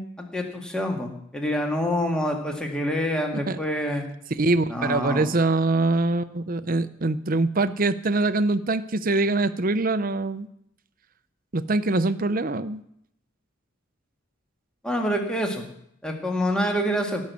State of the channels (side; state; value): both; normal; correlation 0.56